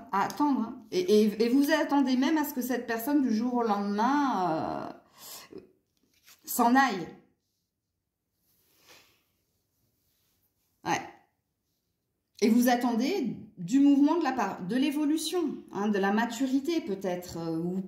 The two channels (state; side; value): identical; both; correlation 1.00